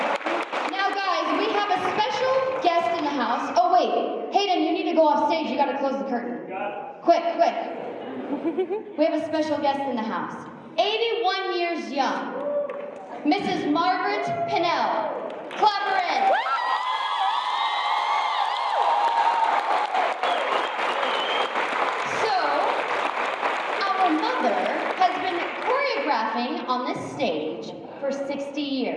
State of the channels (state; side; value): identical; both; correlation 1.00